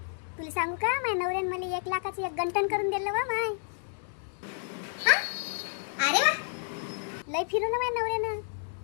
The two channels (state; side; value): silent; right; digital silence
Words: तुला सांगू का, माझ्या नवऱ्याने मला 1 लाखाचं एक गंटन करून दिलं बा माय. हा? अरे वा. लय फिरू ना माझ्या नवऱ्यानं.